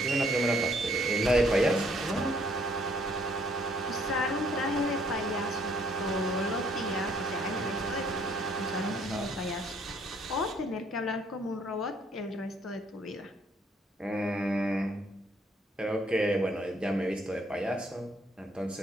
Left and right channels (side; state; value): both; normal; correlation 0.65